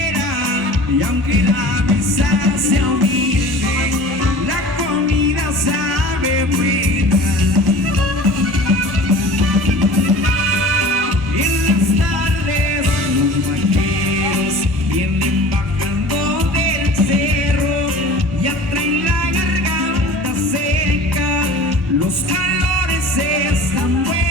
Y aunque la mesa sea humilde, la comida sabe buena. En las tardes los vaqueros vienen bajando del cerro, ya traen la garganta seca, los calores están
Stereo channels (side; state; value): both; normal; correlation 0.41